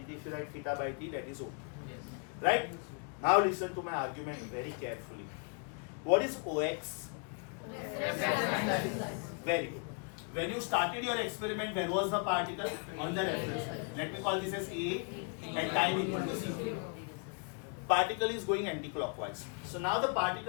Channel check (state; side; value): quieter; right; 39.6 dB